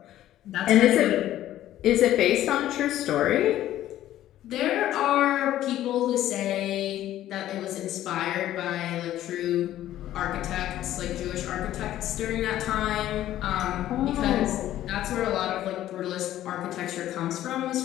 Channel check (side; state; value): right; quieter; 13.1 dB